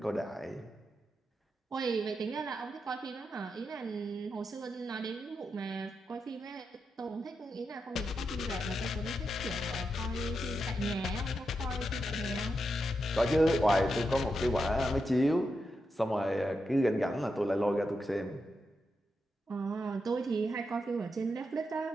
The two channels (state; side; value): normal; both; correlation 0.86